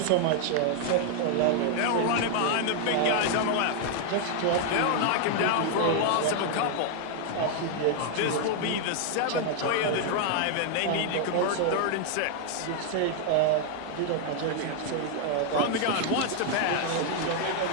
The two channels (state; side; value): different; both; correlation 0.00